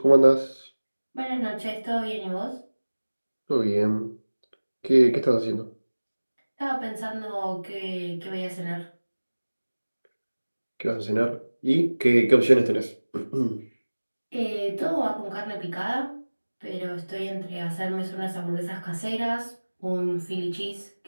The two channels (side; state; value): both; inverted; correlation -1.00